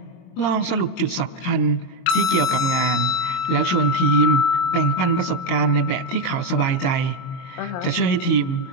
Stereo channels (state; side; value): late; right; 22 ms